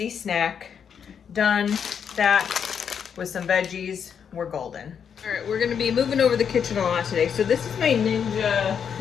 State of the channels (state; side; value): quieter; right; 7.5 dB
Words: snack. Done. That with some veggies, we're golden. All right, we're gonna be moving over the kitchen a lot today. So this is my Ninja